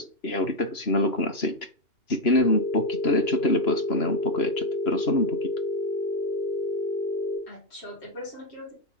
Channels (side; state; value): right; late; 2.9 ms